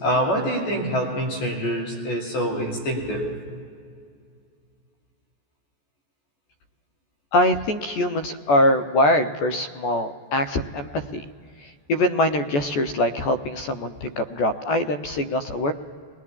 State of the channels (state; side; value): late; right; 14 ms